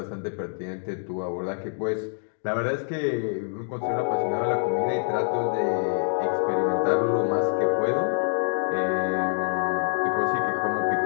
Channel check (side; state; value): right; silent; digital silence